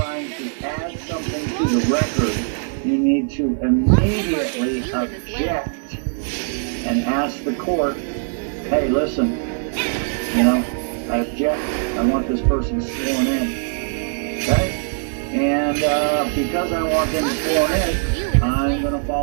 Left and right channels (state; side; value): silent; left; 65 dB below the other